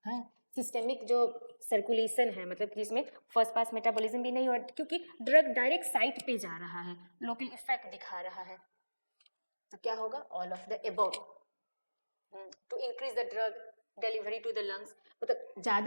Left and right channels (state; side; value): inverted; both; correlation -1.00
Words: है। सिस्टेमिक जो सर्कुलेशन है, मतलब कि इसमें फर्स्ट पास मेटाबॉलिज्म भी नहीं हो रहा क्योंकि ड्रग डायरेक्ट साइट पे जा रहा है, लोकल इफेक्ट दिखा रहा है। तो क्या होगा, all of the above. To increase the drug delivery to the lungs, मतलब